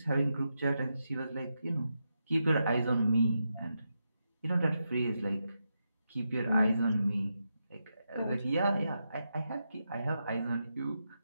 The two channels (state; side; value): inverted; both; correlation -0.86